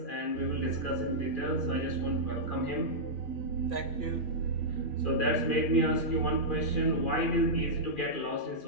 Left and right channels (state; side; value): late; right; 2.4 ms